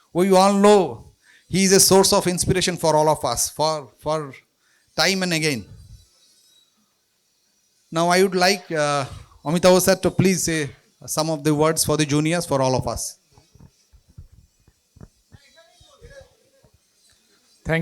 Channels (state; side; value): identical; both; correlation 1.00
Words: We all know he is a source of inspiration for all of us, for time and again. Now I would like Amitav sir to please say some of the words for the juniors, for all of us.